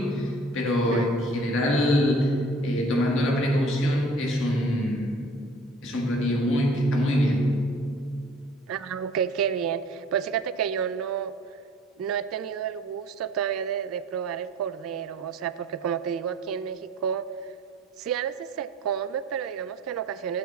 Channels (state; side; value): normal; both; correlation 0.50